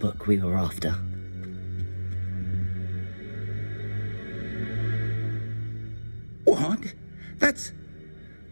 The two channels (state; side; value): inverted; both; correlation -1.00